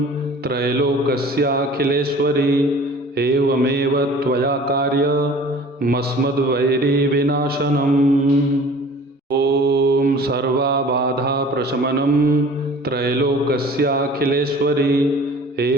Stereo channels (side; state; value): both; normal; correlation 0.46